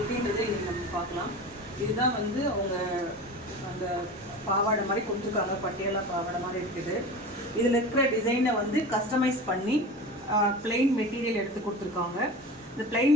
இன்றைக்கி நம்ம பார்க்கலாம். இதுதான் வந்து அவங்க அந்த பாவாடை மாதிரி கொடுத்துருக்காங்க, பட்டியாலா பாவாடை மாதிரி இருக்குது. இதில் இருக்கிற டிசைனை வந்து கஸ்டமைஸ் பண்ணி பிளெயின் மெட்டீரியல் எடுத்து கொடுத்துருக்காங்க. இந்த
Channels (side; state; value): both; normal; correlation 0.33